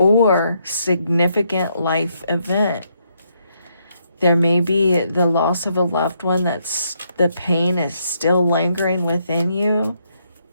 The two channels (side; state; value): both; inverted; correlation -0.75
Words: significant life event. There may be the loss of a loved one that's the pain is still lingering within you.